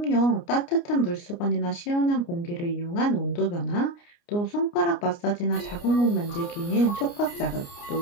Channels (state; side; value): late; right; 29 ms